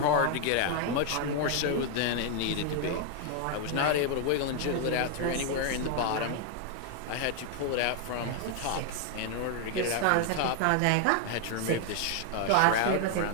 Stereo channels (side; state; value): both; different; correlation 0.00